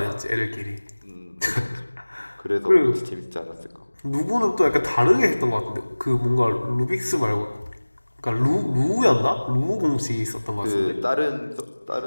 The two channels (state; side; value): inverted; both; correlation -1.00